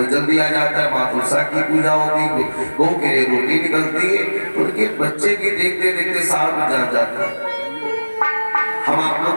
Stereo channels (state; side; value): inverted; both; correlation -1.00